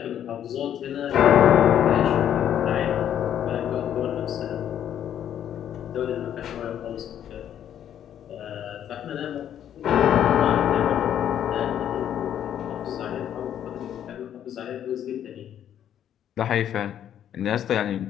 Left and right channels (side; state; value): right; quieter; 10.1 dB